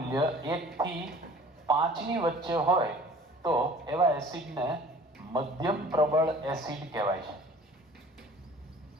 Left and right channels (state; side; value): normal; both; correlation 0.48